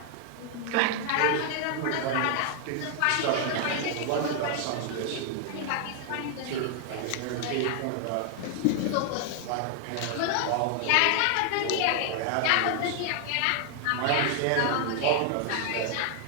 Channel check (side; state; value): both; different; correlation 0.00